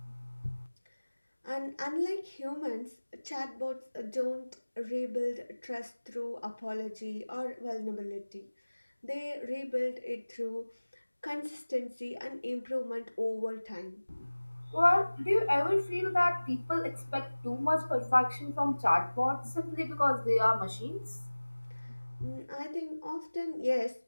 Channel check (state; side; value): inverted; both; correlation -1.00